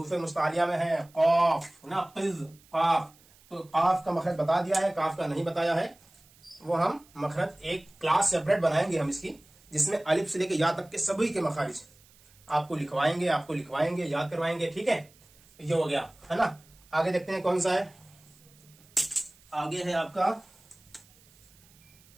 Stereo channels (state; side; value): noise; right; hiss, 28 dB below the sound